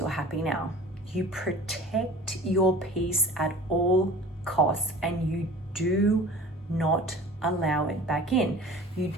happy now. You protect your peace at all costs, and you do not allow it back in. You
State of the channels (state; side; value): normal; both; correlation 0.42